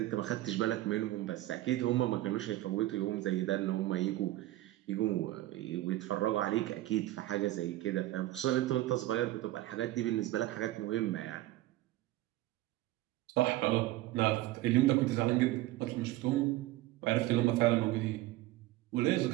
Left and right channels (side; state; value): left; quieter; 16.5 dB